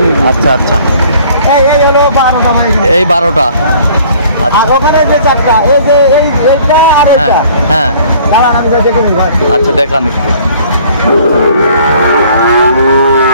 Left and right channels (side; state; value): both; inverted; correlation -0.54